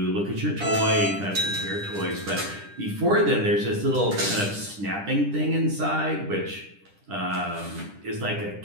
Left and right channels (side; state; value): left; late; 10 ms